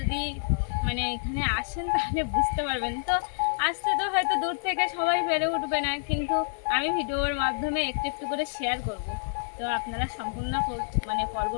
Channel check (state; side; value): silent; right; digital silence